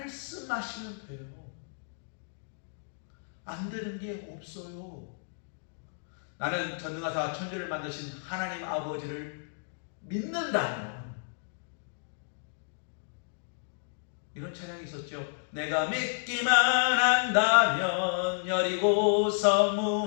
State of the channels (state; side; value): silent; right; digital silence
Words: 돼요. 안 되는 게 없어요. 나는 전능하사 천지를 만드신 하나님 아버지를 믿는다면, 이런 찬양이 있었죠. 내가 믿기만 한다면 여리고성